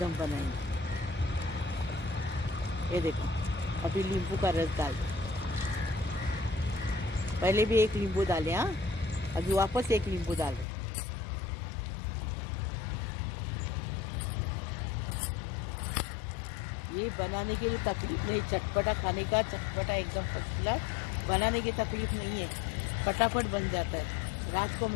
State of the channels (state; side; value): drops out; right; at 10.7 s